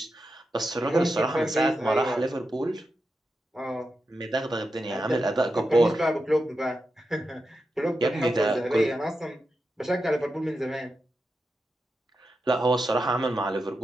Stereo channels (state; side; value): normal; both; correlation 0.89